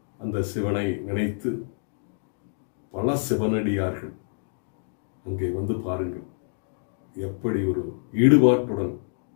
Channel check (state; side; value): silent; right; digital silence